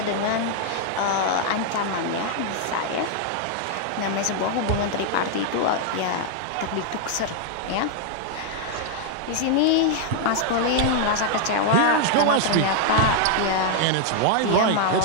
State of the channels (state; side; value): different; both; correlation 0.00